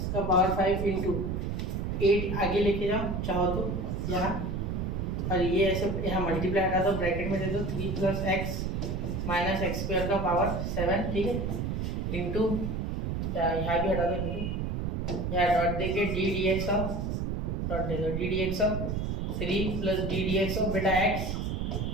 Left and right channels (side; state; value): right; noise; rumble, 2 dB below the sound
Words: का पावर 5 इंटू 8 आगे लेके जाओ चाहो तो यहाँ, और ये ऐसे यहाँ मल्टीप्लाई हटा दो, ब्रैकेट में दे दो 3 plus X minus X square का पावर 7, ठीक है, इंटू यहाँ भी हटा दो, इंटू यहाँ डॉट देके d D x of, dot दे दो d D x of 3 plus d D x of बेटा x